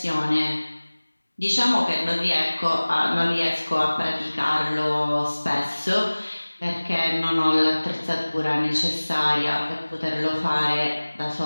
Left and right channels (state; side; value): inverted; both; correlation -1.00